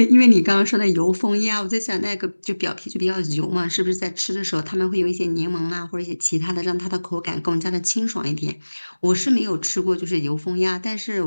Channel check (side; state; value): both; inverted; correlation -1.00